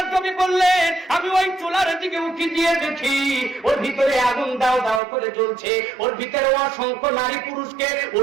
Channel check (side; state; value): left; drops out; at 5.0 s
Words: নবী বললেন, আমি ওই চুলার দিকে উঁকি দিয়ে দেখি ওর ভিতরে আগুন দাও দাও করে জ্বলছে। ওর ভিতরে অসংখ্য নারী পুরুষকে